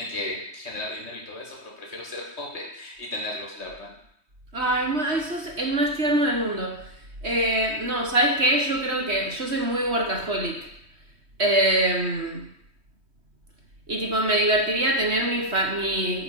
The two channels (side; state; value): left; late; 3.2 ms